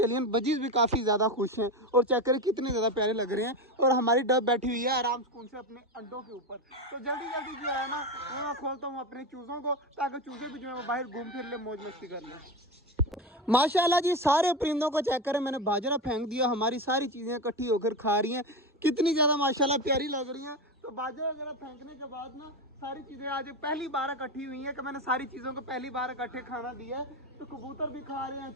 बजीज भी काफ़ी ज़्यादा खुश हैं और चेक करें कितने ज़्यादा प्यारे लग रहे हैं। और हमारी डब बैठी हुई है आराम सुकून से अपने अंडों के ऊपर। तो जल्दी जल्दी जो है ना वो मैं खोलता हूँ अपने चूज़ों को, ताकि चूज़े भी जो है वो बाहर घूम फिर ले, मौज मस्ती कर लें। माशाल्लाह जी सारे परिंदों को चेक करें, मैंने बाजरा फेंक दिया। हमारी सारी चीज़ें इकट्ठी होकर खा रही हैं, कितनी ज़्यादा माशाल्लाह प्यारी लग रही हैं। तो बाजरा वगैरह फेंकने के बाद ना सारी चीज़ें आज पहली बार इकट्ठी हुई हैं कि मैंने सारी चीज़ों को पहली बार इकट्ठे खाना दिया है। तो कबूतर भी खा रहे हैं,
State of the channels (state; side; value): normal; both; correlation 0.18